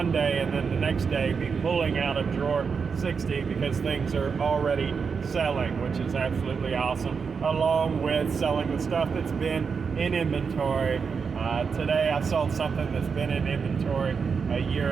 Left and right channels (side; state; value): left; quieter; 5.7 dB